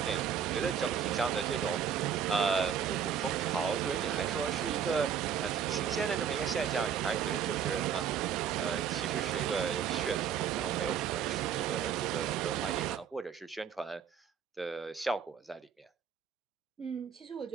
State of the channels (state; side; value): quieter; left; 7.7 dB